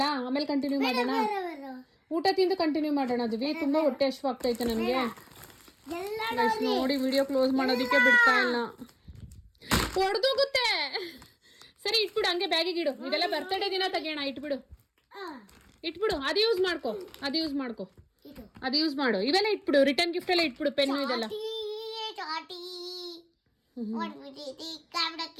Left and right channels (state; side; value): identical; both; correlation 1.00